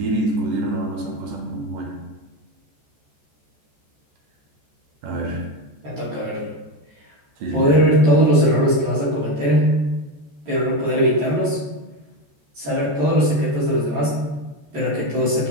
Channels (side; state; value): left; late; 14 ms